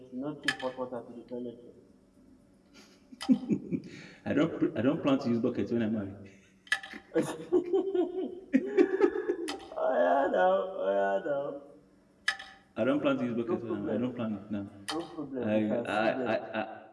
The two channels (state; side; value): identical; both; correlation 1.00